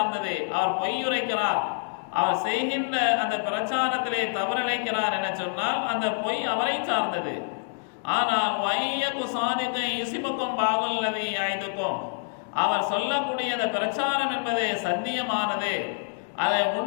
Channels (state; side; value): silent; right; digital silence